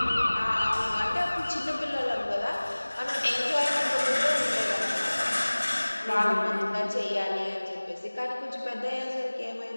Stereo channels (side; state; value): both; inverted; correlation -1.00